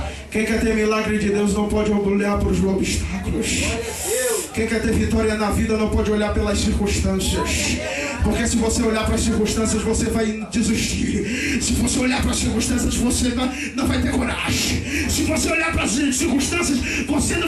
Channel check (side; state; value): both; identical; correlation 1.00